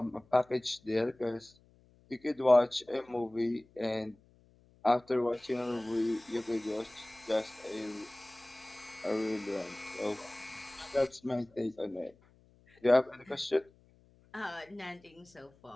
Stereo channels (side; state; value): left; noise; hum, 29 dB below the sound